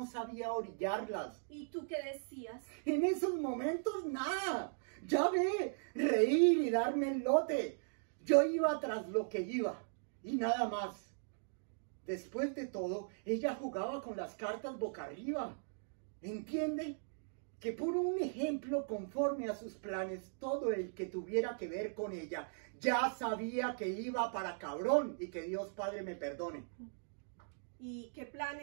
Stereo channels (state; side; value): silent; left; digital silence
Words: sabía orillarlas. ¿Y tú qué decías? En esos momentos nada. Ya ve, reír y darme el lote. Yo iba tras lo que iba y nada más. Después de todo, ella jugaba con las cartas boca arriba. ¿Entiende? Que por un ejemplo conforme a sus planes, todo el que tuviera que ver con ella ya sabía que iba para cabrón y que Dios Padre me perdone. ¿Y qué